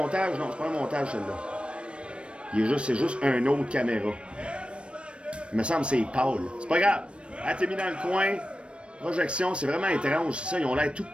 Non, c'est pas un montage, celle-là. C'est juste un autre caméra. Il me semble que c'est Paul. C'est pas grave. Elle t'es mis dans le coin. Projection, c'est vraiment étrange. C'est ça, ils ont l'air tout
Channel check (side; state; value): left; late; 0.059 ms